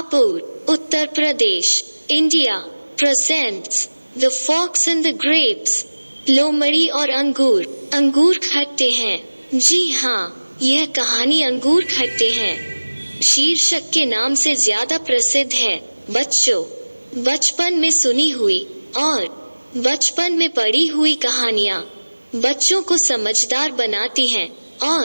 Uttar Pradesh, India presents the fox and the grapes. लोमड़ी और अंगूर। अंगूर खट्टे हैं। जी हाँ, यह कहानी अंगूर खट्टे हैं शीर्षक के नाम से ज्यादा प्रसिद्ध है। बच्चों, बचपन में सुनी हुई और बचपन में पढ़ी हुई कहानियाँ बच्चों को समझदार बनाती हैं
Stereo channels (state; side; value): inverted; both; correlation -1.00